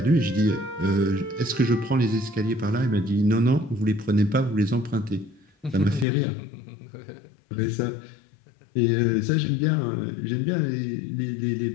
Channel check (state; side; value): drops out; right; at 6.1 s